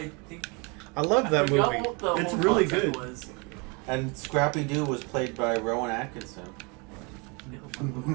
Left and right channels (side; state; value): left; quieter; 30.9 dB